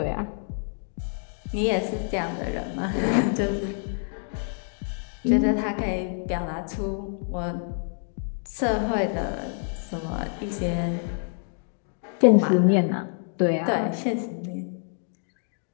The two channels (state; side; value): silent; right; 60 dB below the other